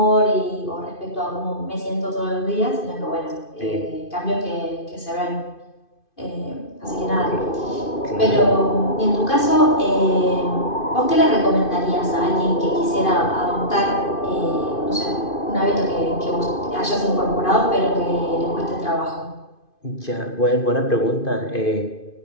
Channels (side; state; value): right; late; 2.5 ms